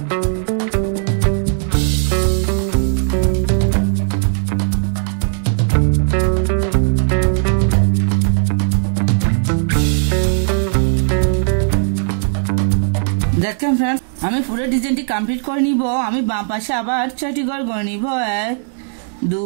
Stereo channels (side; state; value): left; silent; 68 dB below the other